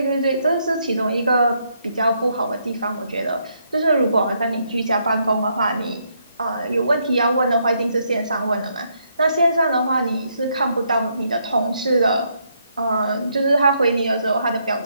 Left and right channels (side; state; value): both; inverted; correlation -0.75